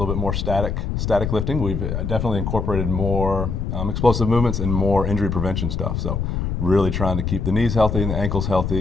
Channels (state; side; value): noise; left; rumble, 2 dB below the sound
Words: bit more static lifting. We've definitely incorporated more explosive movements and more injury prevention stuff. So really trying to keep the knees healthy and the ankles